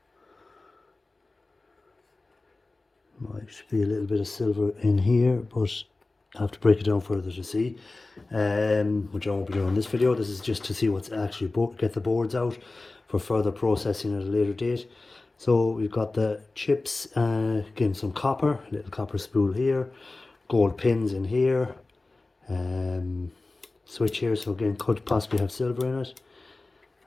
might be a little bit of silver in here, but I have to break it down further to see, which I won't be doing in this video. This is just to see what's actually get the boards out for further processing at a later date. So we've got the chips, again some copper, a little copper spool here. gold pins in here, switch here, so again could possibly have silver in it,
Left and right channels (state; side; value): quieter; right; 3.3 dB